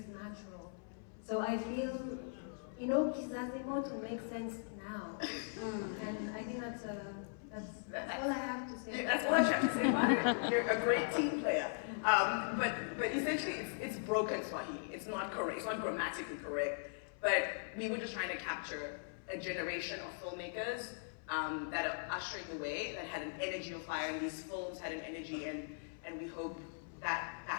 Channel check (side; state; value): right; silent; 51 dB below the other